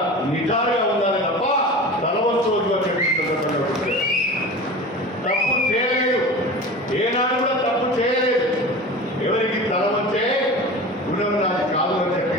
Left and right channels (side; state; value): both; normal; correlation 0.34